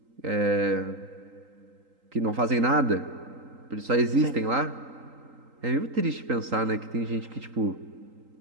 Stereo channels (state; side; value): late; left; 3.8 ms